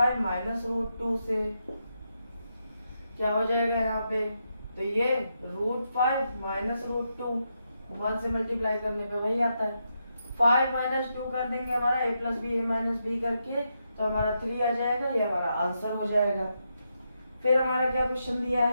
माइनस √2 से क्या हो जाएगा यहाँ पे, तो ये √5 माइनस √2 1 से मल्टीप्लाई करने पे वही आता है, 5 माइनस 2 कर देंगे हमारा a plus B, a minus B करके, तो हमारा 3 आ जाएगा, ये हमारा आंसर हो जाएगा। फिर हमारा क्या क्वेश्चन दिया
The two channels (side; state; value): both; inverted; correlation -0.83